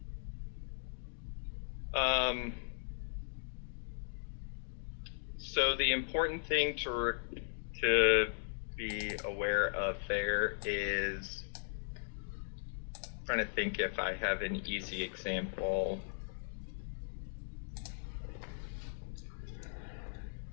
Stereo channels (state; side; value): silent; right; digital silence